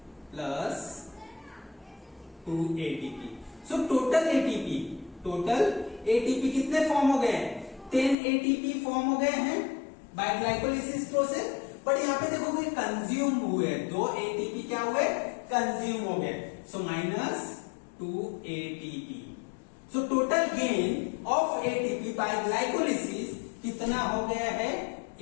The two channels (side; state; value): right; drops out; at 8.2 s